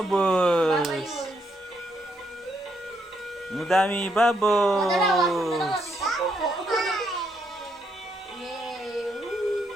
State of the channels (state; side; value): normal; both; correlation 0.76